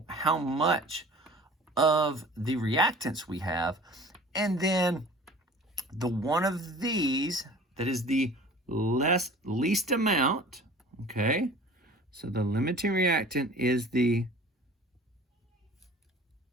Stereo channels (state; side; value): normal; both; correlation 0.44